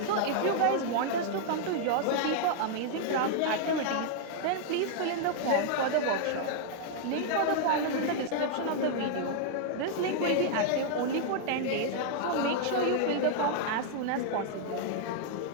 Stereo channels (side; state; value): both; different; correlation 0.00